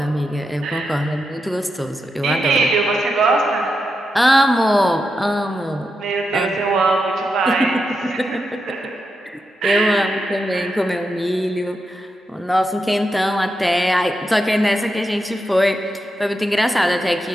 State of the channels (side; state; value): both; normal; correlation 0.86